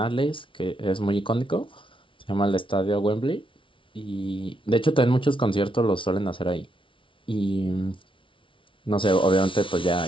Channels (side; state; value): right; late; 0.25 ms